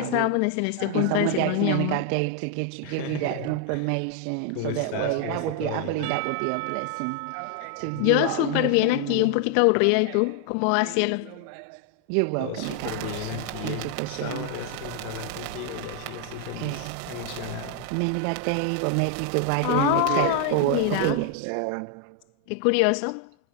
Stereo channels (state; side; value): different; both; correlation 0.00